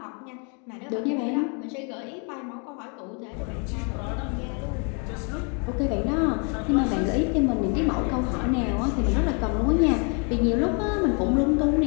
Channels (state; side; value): quieter; right; 36.8 dB